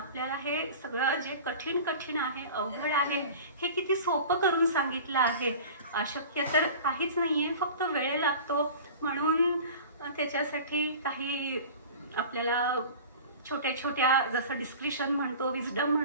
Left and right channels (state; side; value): inverted; both; correlation -0.38